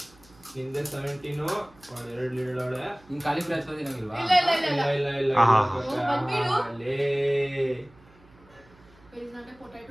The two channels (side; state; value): right; noise; hum, 28 dB below the sound